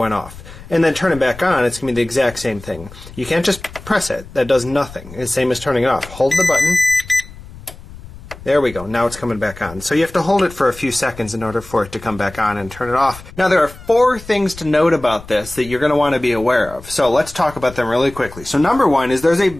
off. And then turn it back on, it's going to be the exact same thing. You can't just press it. That does nothing. It's the same as turning it off. Hold the button. There we go. Now it's coming back on. So you have to hold it for a few seconds in order for it to come back on and turn it off. Now there are 4 things to note about this that you're going to want to be aware of. So let's talk about them really quickly. So number 1 is there's a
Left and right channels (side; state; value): left; noise; rumble, 17 dB below the sound